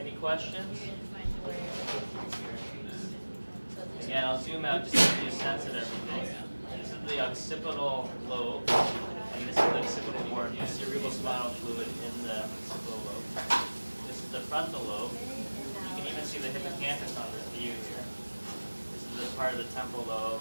questions? You're gonna find where. So this Again, I'll zoom out just to give you a sense of everything. This is the occipital lobe, and this is the occipital horn, the cerebral spinal fluid in the occipital lobe. This is the frontal lobe. You can even see the hippocampus on this view here. This is the part of the temporal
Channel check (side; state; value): both; inverted; correlation -1.00